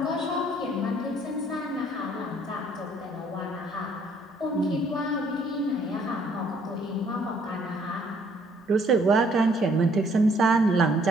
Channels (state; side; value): normal; both; correlation 0.63